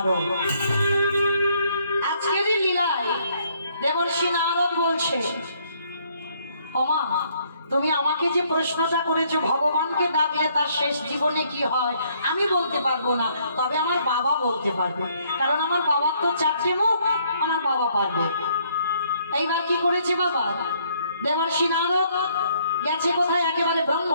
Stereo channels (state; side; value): inverted; both; correlation -0.67